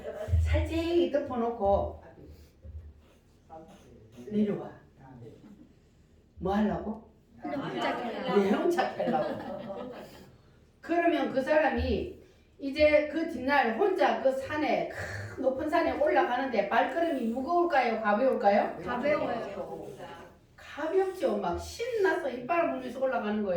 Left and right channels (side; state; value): both; identical; correlation 1.00